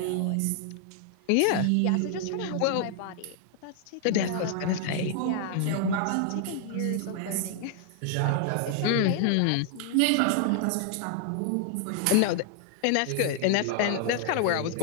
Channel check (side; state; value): both; different; correlation 0.00